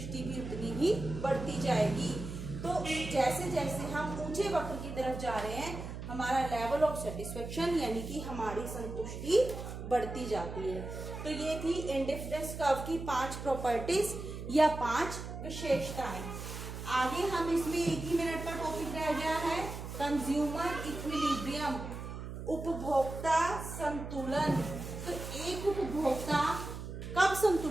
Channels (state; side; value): noise; right; hum, 8 dB below the sound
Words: भी उतनी ही बढ़ती जाएगी। तो जैसे जैसे हम ऊंचे वक्र की तरफ जा रहे हैं हमारा लेवल ऑफ सेटिस्फेक्शन यानी कि हमारी संतुष्टि बढ़ती जाती है। तो ये थी इंडिफरेंस कर्व की 5 प्रॉपर्टीज या 5 विशेषताएं। आगे हम इसमें एक ही मिनट का टॉपिक रह गया है, कंज्यूमर इक्विलिब्रियम, उपभोक्ता संतुलन। तो एक उपभोक्ता कब